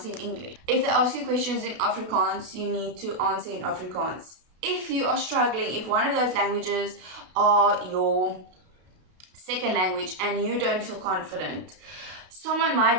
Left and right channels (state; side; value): late; left; 32 ms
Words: in English. If they ask you questions in Afrikaans, you need to answer in Afrikaans. If you are struggling, if one of those languages are your second language and you don't feel confident, someone